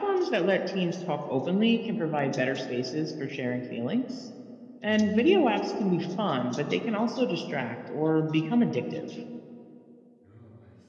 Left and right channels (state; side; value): identical; both; correlation 1.00